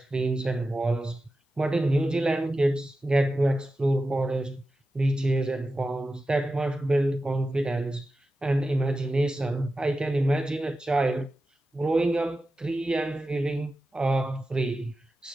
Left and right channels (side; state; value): both; normal; correlation 0.93